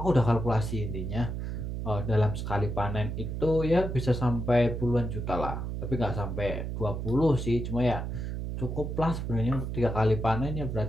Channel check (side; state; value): right; noise; hum, 4 dB below the sound